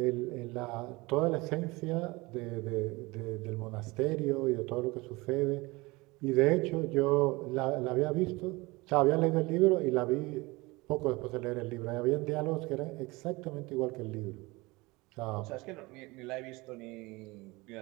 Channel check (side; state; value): left; quieter; 23.2 dB